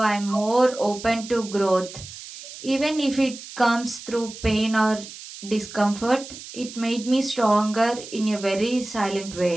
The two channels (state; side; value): noise; right; hiss, 14 dB below the sound